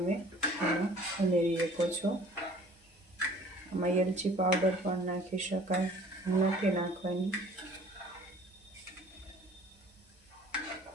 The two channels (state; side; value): normal; both; correlation 0.51